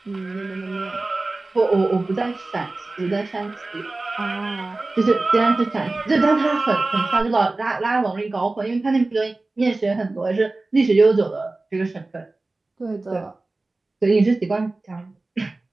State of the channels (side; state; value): left; quieter; 3.2 dB